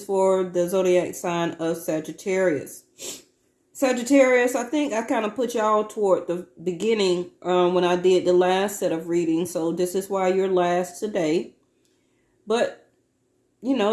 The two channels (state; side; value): identical; both; correlation 1.00